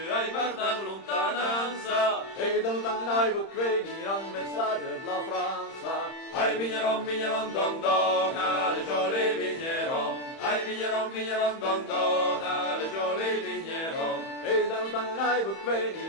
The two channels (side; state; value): right; late; 31 ms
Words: ai guardan lontananza. E da lontano ai può venire un messaggio della Francia. Ai vigneron, vigneron, don dona, le gioli vigneron. Ai vigneron, vigneron, don dona, le gioli vigneron. E da lontano ai può